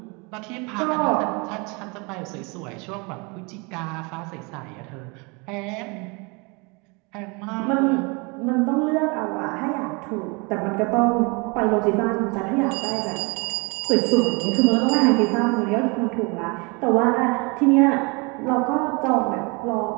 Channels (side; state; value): left; quieter; 29.5 dB